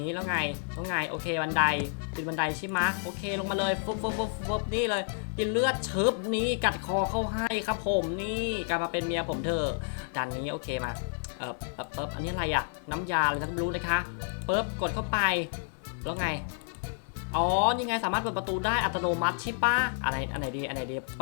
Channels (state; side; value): silent; right; digital silence